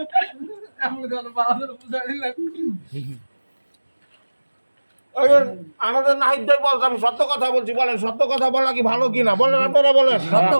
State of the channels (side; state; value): both; inverted; correlation -1.00